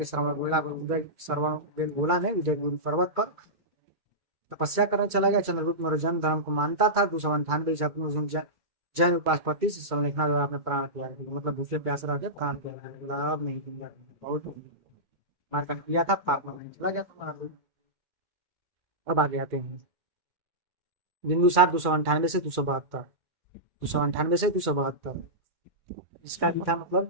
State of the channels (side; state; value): left; late; 2.3 ms